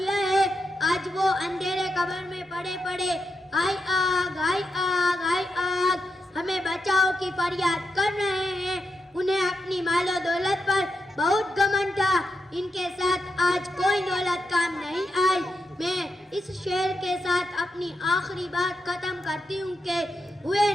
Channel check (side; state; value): both; normal; correlation 0.85